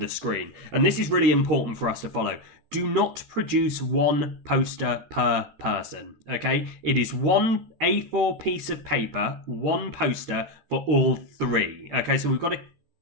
screen, and this is really important for us to follow. Do not produce one poster per person, okay? It is one A4 piece of paper, one poster for all 3, okay? So we've got to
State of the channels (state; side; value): late; left; 13 ms